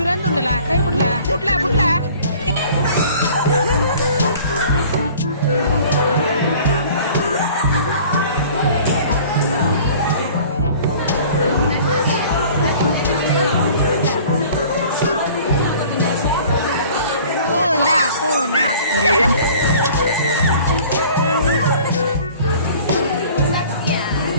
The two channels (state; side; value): inverted; both; correlation -0.48